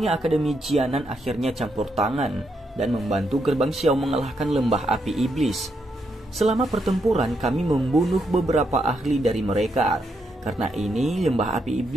Akademi Jianan akhirnya campur tangan dan membantu gerbang Xiao mengalahkan lembah api iblis. Selama pertempuran kami membunuh beberapa ahli dari mereka. Karena ini lembah api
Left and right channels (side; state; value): both; normal; correlation 0.79